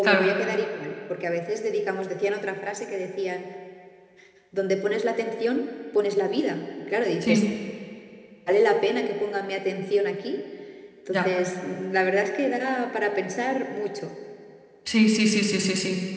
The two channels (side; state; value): both; identical; correlation 1.00